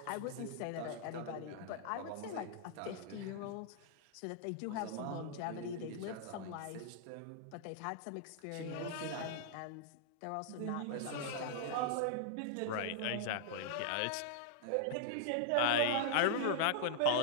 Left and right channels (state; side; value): different; both; correlation -0.01